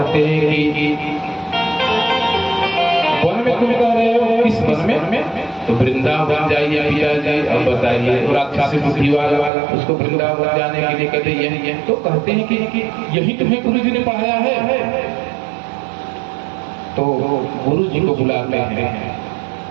हैं कि वन में तुम कह रहे हो, किस वन में? तो वृंदावन जाइए पिताजी। अब बताइए, राक्षसी बुद्धि वाला उसको वृंदावन जाने के लिए कहते यही। तो कहते हैं कि यही तुम्हें गुरु जी ने पढ़ाया है। तो गुरु जी को बुलाते हैं,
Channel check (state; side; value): drops out; left; at 9.5 s